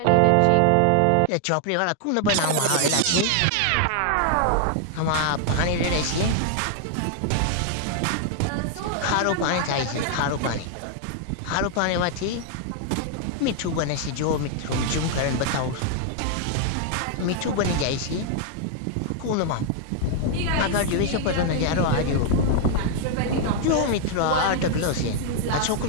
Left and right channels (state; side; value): different; both; correlation 0.00